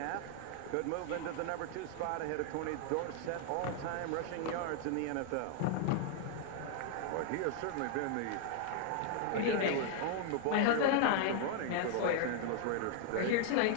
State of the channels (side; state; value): both; different; correlation 0.00